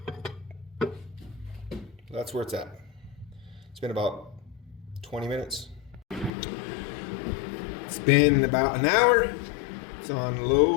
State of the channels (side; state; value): right; drops out; at 6.3 s